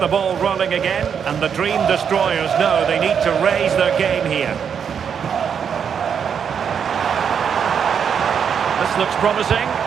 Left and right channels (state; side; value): quieter; left; 7.4 dB